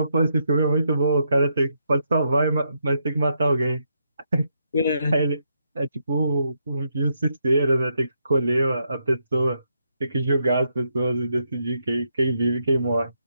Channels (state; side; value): inverted; both; correlation -0.79